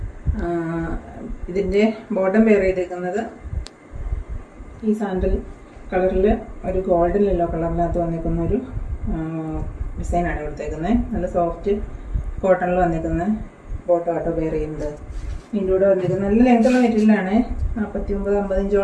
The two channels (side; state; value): both; identical; correlation 1.00